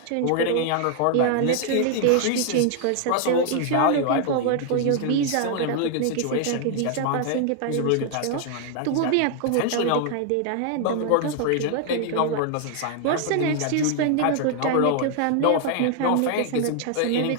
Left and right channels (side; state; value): both; different; correlation 0.00